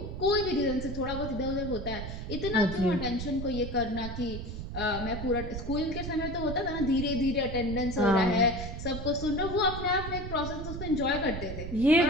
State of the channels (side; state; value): right; noise; rumble, 7 dB below the sound